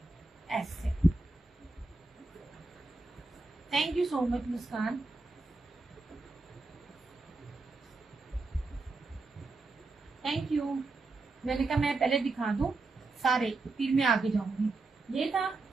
ऐसे। Thank you so much Muskan. Thank you. मैंने कहा मैं पहले दिखा दूं सारे, फिर मैं आगे जाऊंगी। ये था,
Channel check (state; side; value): quieter; left; 3.4 dB